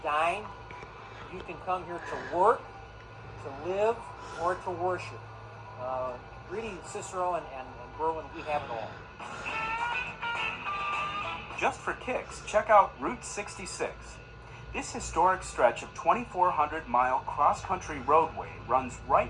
dine. You can come here to work, to live, or to worship. Really, Cicero and Berwyn, we have it all. Just for kicks, check out Route 66. This historic stretch of 2,400-mile cross-country roadway runs right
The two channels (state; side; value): identical; both; correlation 1.00